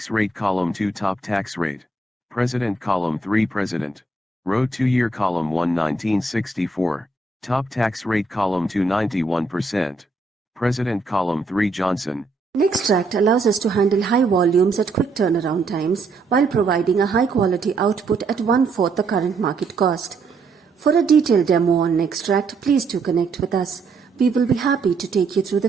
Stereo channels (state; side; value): quieter; left; 3.6 dB